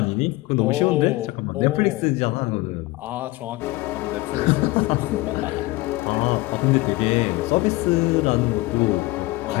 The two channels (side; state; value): right; quieter; 20.4 dB